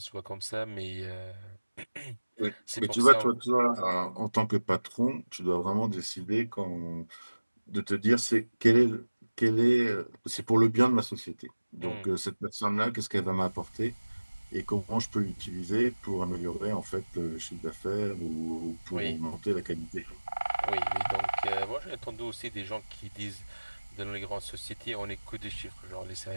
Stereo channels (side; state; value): both; inverted; correlation -1.00